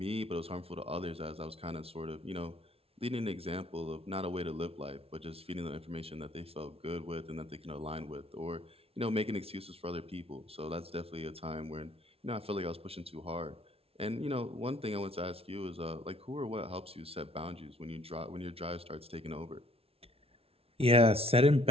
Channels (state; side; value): late; left; 0.28 ms